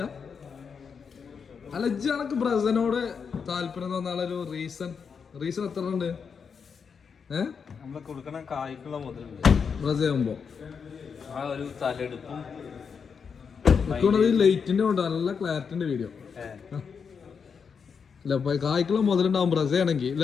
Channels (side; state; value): right; quieter; 6.2 dB